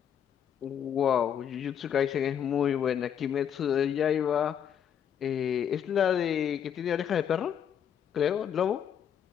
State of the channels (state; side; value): quieter; right; 8.8 dB